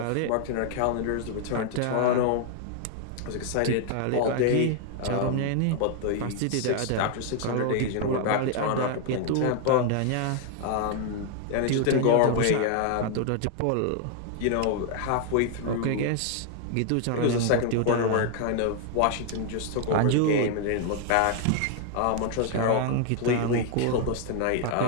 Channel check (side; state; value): both; different; correlation 0.00